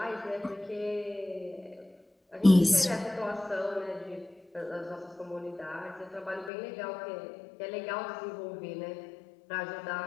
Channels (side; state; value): right; drops out; at 6.5 s